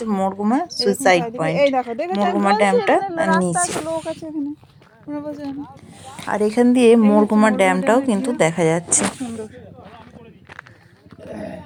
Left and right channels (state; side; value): identical; both; correlation 1.00